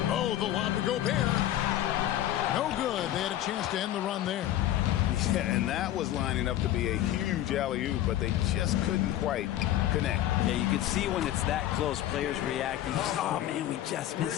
Oh, the lob to Gobert. No good. They had a chance to end the run there. Yeah, and that was lining up to be a huge alley-oop, but they just couldn't quite connect. Yeah, you can see when it's that close, players reacting. Oh, man, we just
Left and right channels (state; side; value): quieter; right; 13.0 dB